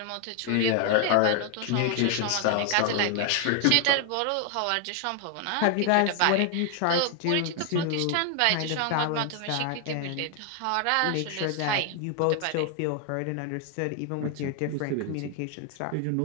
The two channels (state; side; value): different; both; correlation 0.00